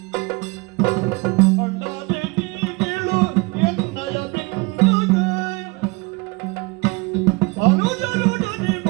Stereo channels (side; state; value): left; quieter; 26.3 dB